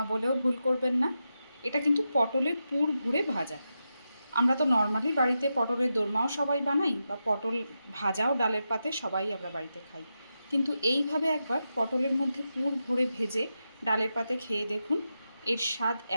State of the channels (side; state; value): both; inverted; correlation -0.89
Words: বলেও ভুল করবেন না, এটা কিন্তু পটলের পুর ভরে ভাজা। আমরা তো নর্মালি বাড়িতে পটলের দোরমাও সবাই বানাই, বা পটল ভাজাও ডালের পাতে সবাই আমরা বাড়িতে খাই। কিন্তু এইভাবে একবার পটলের মধ্যে পুর ভরে ভেজে ডালের পাতে খেয়ে দেখুন, এর স্বাদ